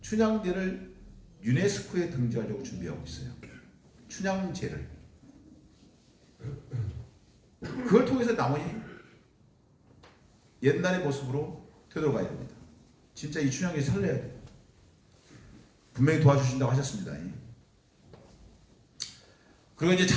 춘향제를 유네스코에 등재하려고 준비하고 있어요. 춘향제를. 그걸 통해서 남원이 옛날의 모습으로 되돌아가야 됩니다. 진짜 이 춘향제 살려야 돼요. 분명히 도와주신다고 하셨습니다. 그리고 이제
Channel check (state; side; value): identical; both; correlation 1.00